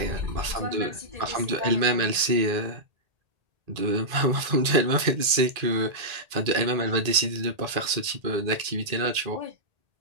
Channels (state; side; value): late; left; 1.8 ms